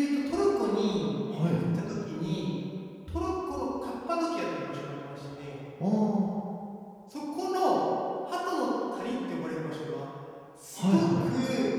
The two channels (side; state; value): both; identical; correlation 1.00